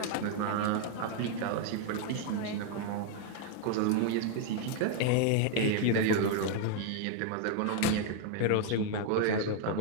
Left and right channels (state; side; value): different; both; correlation 0.00